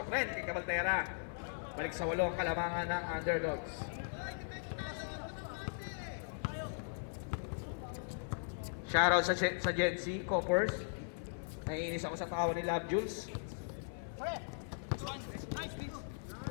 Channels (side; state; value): right; silent; 52 dB below the other